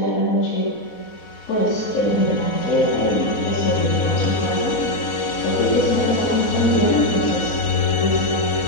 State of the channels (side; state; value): right; late; 4.1 ms